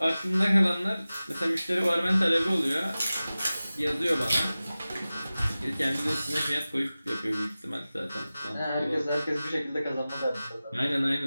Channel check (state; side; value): inverted; both; correlation -0.96